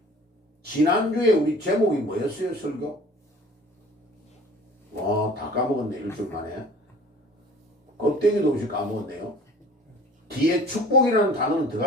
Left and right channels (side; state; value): both; normal; correlation 0.47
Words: 지난주에 우리 제목이 뭐였어요, 설교? 다 까먹었네, 일주일 만에. 껍데기도 없이 까먹었네요. 뒤에 축복이라는 단어는